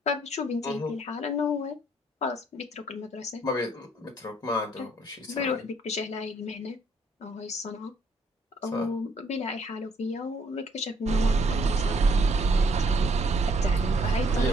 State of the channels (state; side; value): normal; both; correlation 0.66